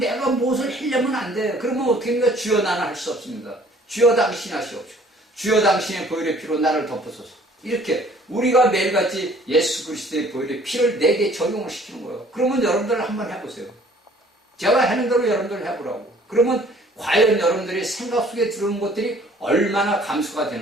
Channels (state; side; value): normal; both; correlation 0.55